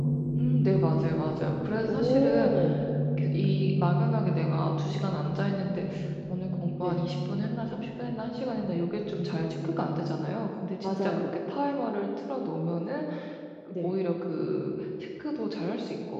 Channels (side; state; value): both; identical; correlation 1.00